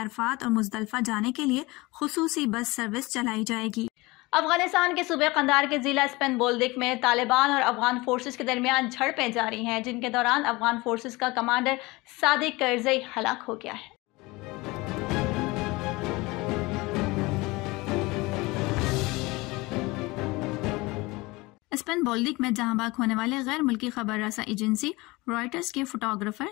और मुजदलफा जाने के लिए खुसूसी बस सर्विस चलाई जाएगी। अफगानिस्तान के सूबे कंधार के जिला स्पेन बोल्दिक में तालिबान और अफगान फोर्सेस के दरमियान झड़पें जारी हैं, जिनके दौरान अफगान फोर्सेस का कमांडर सादिक करजई हलाक हो गया है। स्पेन बोल्दिक में जहां बाग होने वाले गैर मुल्की खबर रसा एजेंसी रॉयटर्स के फोटोग्राफर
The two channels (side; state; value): right; quieter; 22.7 dB